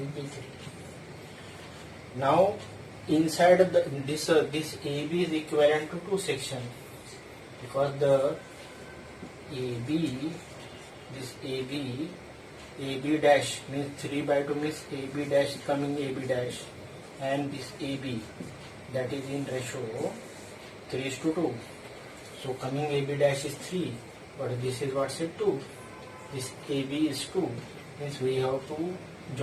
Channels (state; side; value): identical; both; correlation 1.00